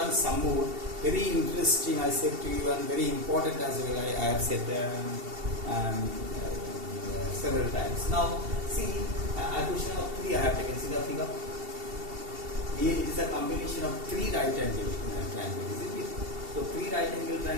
some more. Very interesting, I said to you, and very important as well. I have said several times. Now see, a question of 3 I have taken. See the figure. Here it is a combination of 3 right angle triangles, isn't it? So 3 right angle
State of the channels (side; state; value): left; late; 2.7 ms